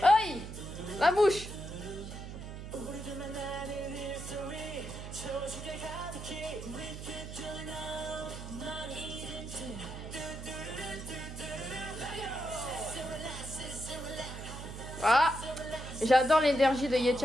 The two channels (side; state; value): right; noise; hum, 9 dB below the sound